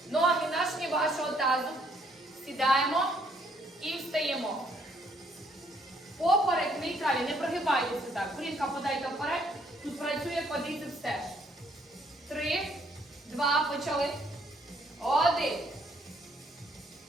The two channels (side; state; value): both; normal; correlation 0.67